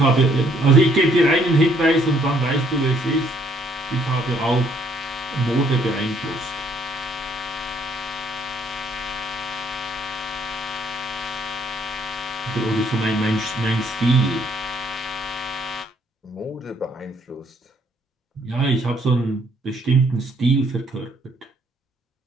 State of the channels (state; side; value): normal; both; correlation 0.66